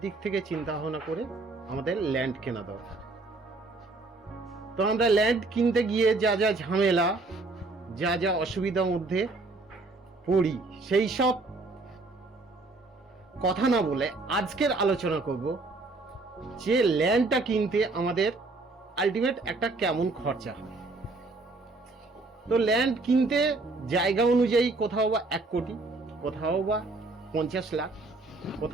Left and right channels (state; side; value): quieter; left; 3.3 dB